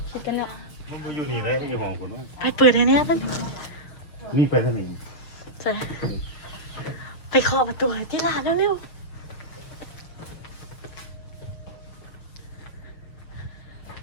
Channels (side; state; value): right; late; 6.8 ms